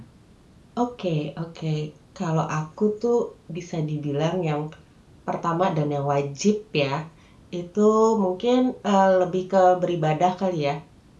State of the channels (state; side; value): identical; both; correlation 1.00